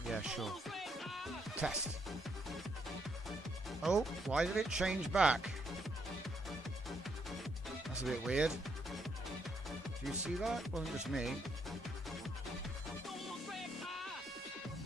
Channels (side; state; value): both; normal; correlation 0.74